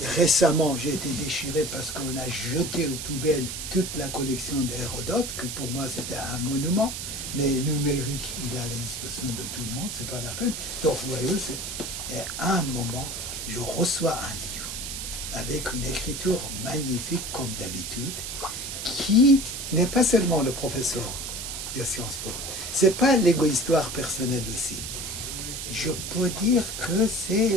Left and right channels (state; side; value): noise; right; hiss, 6 dB below the sound